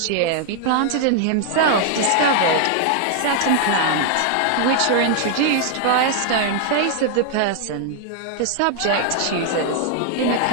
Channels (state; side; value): different; both; correlation 0.00